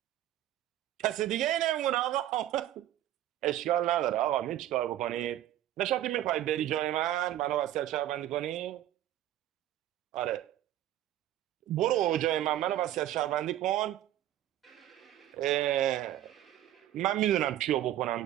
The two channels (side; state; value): left; quieter; 13.0 dB